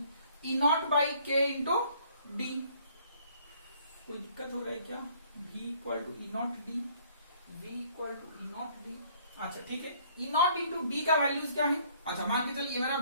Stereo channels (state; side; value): inverted; both; correlation -0.60